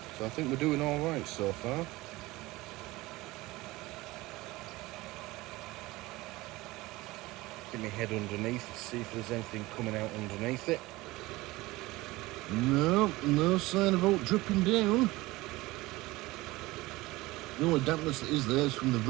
so I think we're doing all right so far. Get my head underneath to see if there's anything coming out underneath it. No sign of alt dripping down. The only dampness that is there is from the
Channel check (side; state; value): left; quieter; 20.0 dB